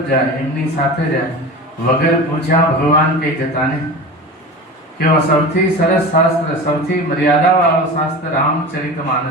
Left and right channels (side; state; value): both; normal; correlation 0.31